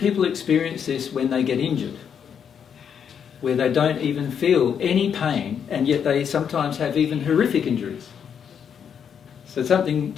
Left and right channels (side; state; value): right; quieter; 7.8 dB